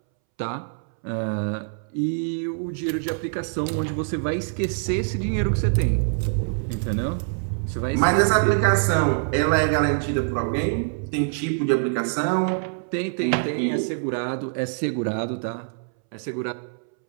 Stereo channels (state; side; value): silent; left; 62 dB below the other